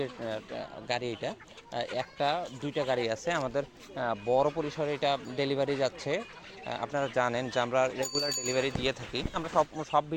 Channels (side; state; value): both; identical; correlation 1.00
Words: গাড়ি। এটা একটা দুইটা গাড়ি আছে আমাদের, বড় পরিসরে এটা ডেলিভারি যাচ্ছে। আপনারা জানেন যে আমরা রেগুলার ডেলিভারি দিয়ে থাকি। আমরা সব